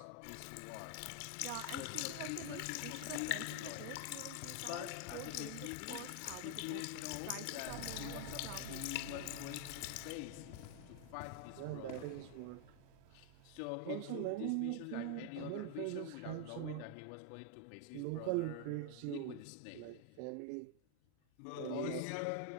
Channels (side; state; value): both; different; correlation 0.00